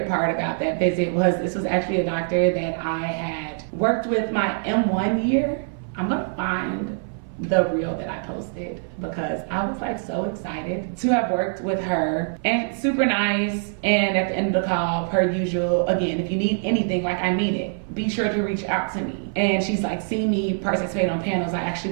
part about that visit was this was actually a doctor that I had worked with my M1 year. I'm gonna find the reel that I posted because I was like so excited to have worked with her, and super nice. And at the end of the call, per usual, again, if you need anything, like I mean it, be sure to reach out to me. And she's like, see me participate on panels. I actually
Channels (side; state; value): left; silent; 57 dB below the other